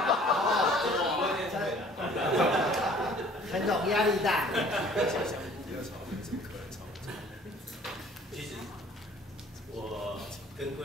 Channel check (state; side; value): normal; both; correlation 0.53